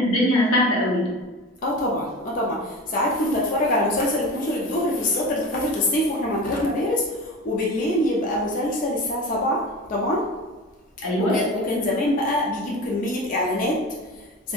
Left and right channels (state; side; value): normal; both; correlation 0.31